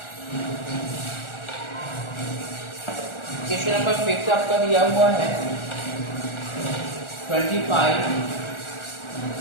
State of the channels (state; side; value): late; right; 1.4 ms